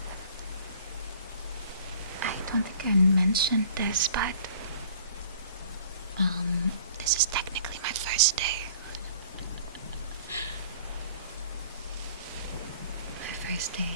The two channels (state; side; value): inverted; both; correlation -0.50